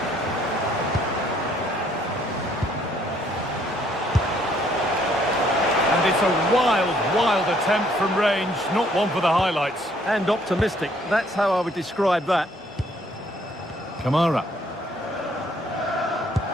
And it's a wild attempt from range, not one for the highlights. And optimistic. That's how I would describe that. Kamara.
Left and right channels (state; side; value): normal; both; correlation 0.65